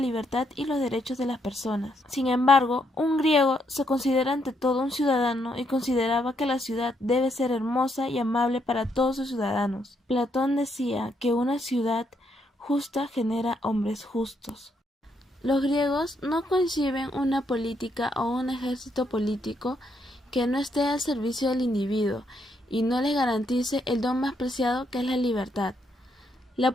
y los derechos de las personas. Sin embargo, un griego se considera ante todo un ciudadano y consideraba que la ciudad debe ser hermosa y amable para todos sus ciudadanos. Platón decía que una ciudad justa genera hombres justos. Los griegos no conciben una política o un ejército político que no esté al servicio del individuo y no les garantice el don más preciado que es la libertad. La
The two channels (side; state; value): both; normal; correlation 0.75